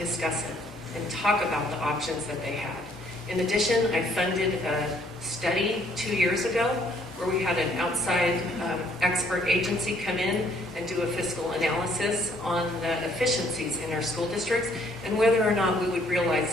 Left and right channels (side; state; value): both; normal; correlation 0.64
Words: it and talk about the options that they had. In addition, I funded a study 2 years ago where we had an outside expert agency come in and do a fiscal analysis on the efficiencies in our school districts and whether or not we would